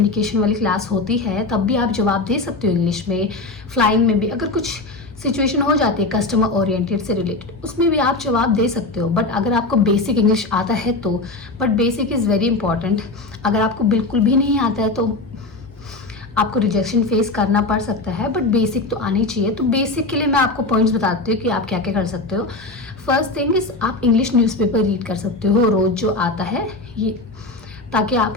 वाली क्लास होती है तब भी आप जवाब दे सकते हो इंग्लिश में। फ्लाइंग में भी अगर कुछ सिचुएशन हो जाती है कस्टमर ओरिएंटेड से रिलेटेड, उसमें भी आप जवाब दे सकते हो। बट अगर आपको बेसिक इंग्लिश आता है तो, but basic is very important. अगर आपको बिल्कुल भी नहीं आता है तो आपको रिजेक्शन फेस करना पड़ सकता है, बट बेसिक तो आनी चाहिए। तो बेसिक के लिए मैं आपको पॉइंट्स बताती हूँ कि आप क्या क्या कर सकते हो। फर्स्ट थिंग इज, आप इंग्लिश न्यूज़पेपर रीड कर सकते हो रोज़ जो आता है ये, ताकि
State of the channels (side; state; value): right; quieter; 3.2 dB